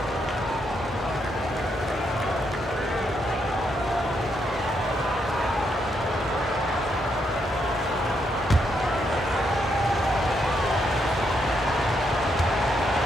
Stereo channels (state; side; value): normal; both; correlation 0.78